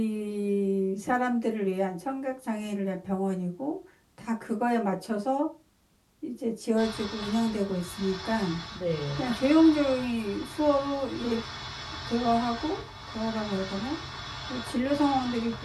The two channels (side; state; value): both; identical; correlation 1.00